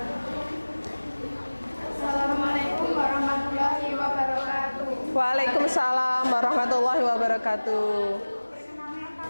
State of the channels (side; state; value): both; inverted; correlation -1.00